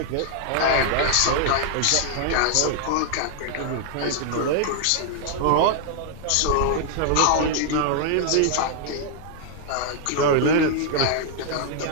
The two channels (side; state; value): both; different; correlation 0.00